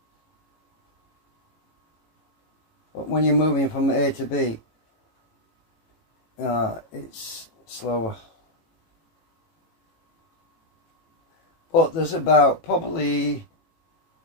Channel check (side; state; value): right; late; 18 ms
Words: But when you're moving from A to B, it's slower. But there's about probably